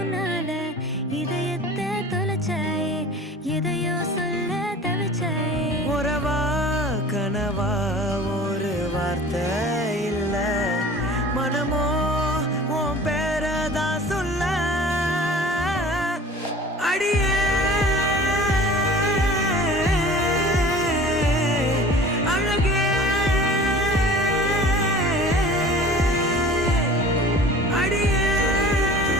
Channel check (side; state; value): both; normal; correlation 0.43